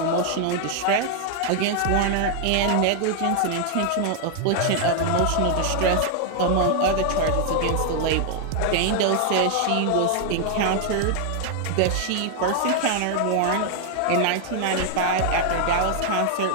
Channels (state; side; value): different; both; correlation 0.00